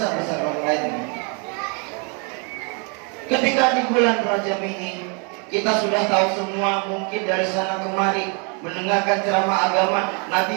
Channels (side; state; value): left; quieter; 35.4 dB